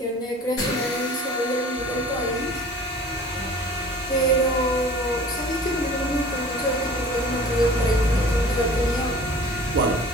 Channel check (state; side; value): normal; both; correlation 0.44